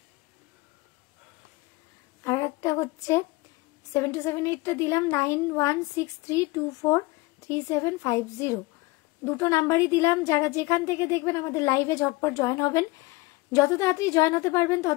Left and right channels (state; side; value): quieter; right; 22.5 dB